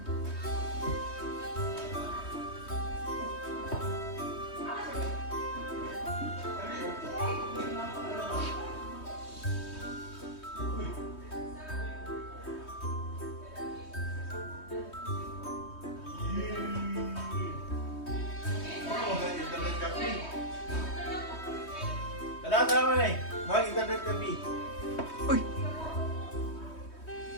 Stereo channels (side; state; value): right; late; 3.2 ms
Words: Tara mo na eh. Mag-internet kami. Uy.